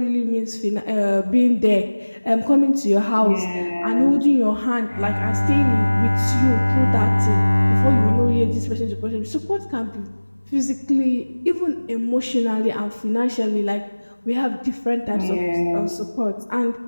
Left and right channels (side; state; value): both; inverted; correlation -1.00